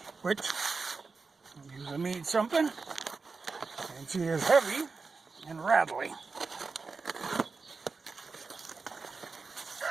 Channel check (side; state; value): left; quieter; 4.4 dB